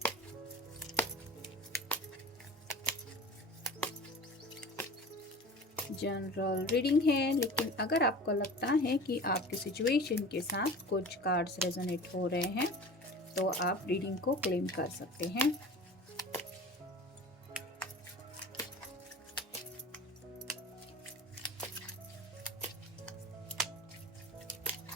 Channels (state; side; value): normal; both; correlation 0.38